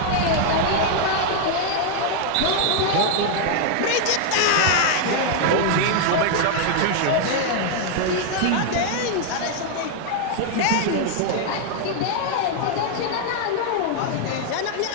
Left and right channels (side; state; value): both; different; correlation 0.00